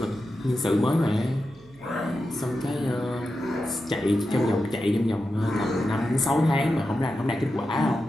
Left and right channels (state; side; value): noise; right; hum, 26 dB below the sound